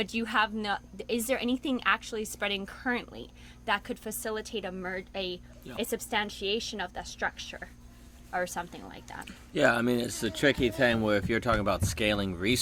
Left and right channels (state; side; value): identical; both; correlation 1.00